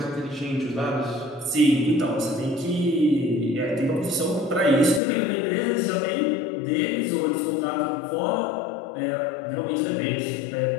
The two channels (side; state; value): right; drops out; at 5.0 s